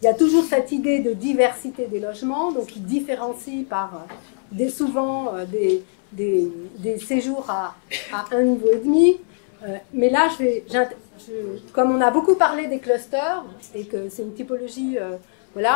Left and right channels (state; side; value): silent; right; digital silence